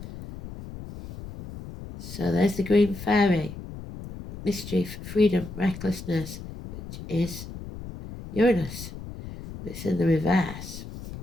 So there's the green fairy, mischief, freedom, recklessness, which is Uranus. It's in the reverse.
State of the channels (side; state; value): left; noise; rumble, 12 dB below the sound